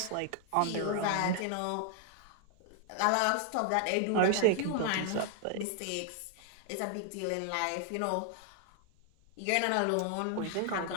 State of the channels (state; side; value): different; both; correlation 0.00